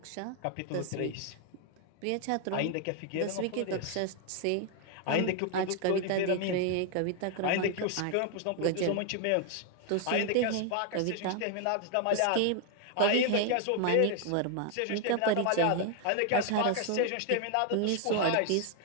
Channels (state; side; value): different; both; correlation 0.00